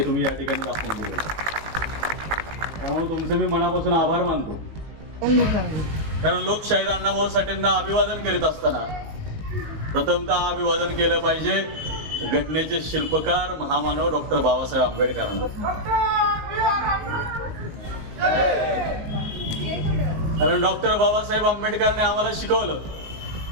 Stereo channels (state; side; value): late; left; 19 ms